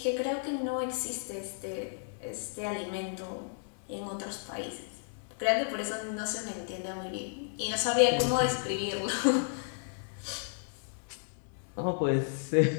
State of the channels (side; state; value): right; silent; digital silence